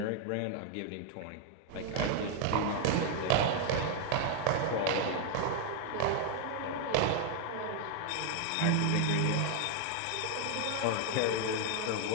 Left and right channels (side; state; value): both; different; correlation 0.00